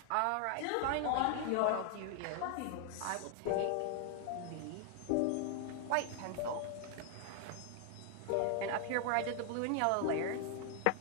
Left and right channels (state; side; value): different; both; correlation 0.00